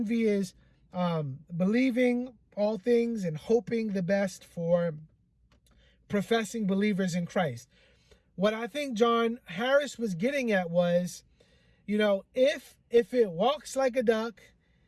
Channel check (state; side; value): identical; both; correlation 1.00